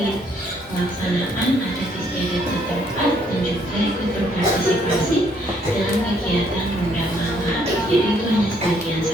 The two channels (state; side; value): normal; both; correlation 0.68